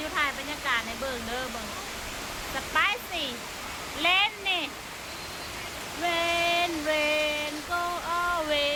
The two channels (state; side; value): identical; both; correlation 1.00